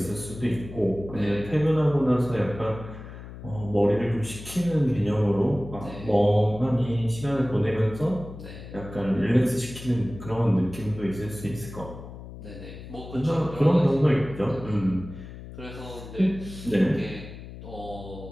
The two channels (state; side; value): noise; left; hum, 13 dB below the sound